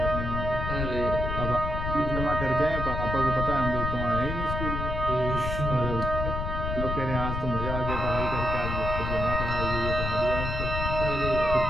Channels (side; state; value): left; noise; rumble, 3 dB below the sound